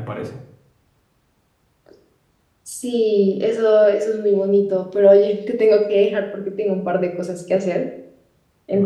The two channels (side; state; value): both; identical; correlation 1.00